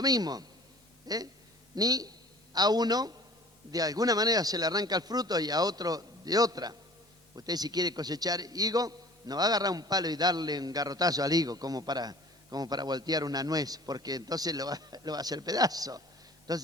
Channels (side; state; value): both; normal; correlation 0.47